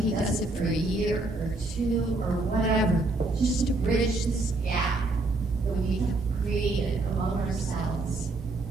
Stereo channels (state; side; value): quieter; left; 3.1 dB